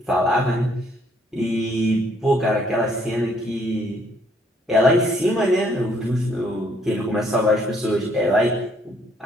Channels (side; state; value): both; normal; correlation 0.67